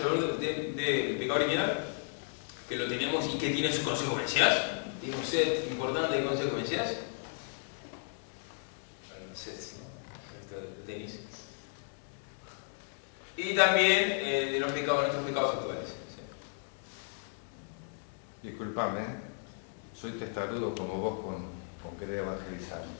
del pecado original, que lo tenemos y que tiene sus consecuencias. Tiene un set importante de consecuencias. Sets, ¿no? El tenis. Y también de los pecados, nuestros pecados actuales. ¿Sí? Disculpame, soy testarudo como vos con querer evangelizar.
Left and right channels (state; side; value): silent; right; 55 dB below the other